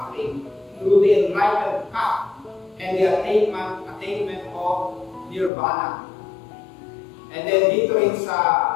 through the enlightened path and the attainment of nirvana. And then dito rin sa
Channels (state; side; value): drops out; right; at 5.5 s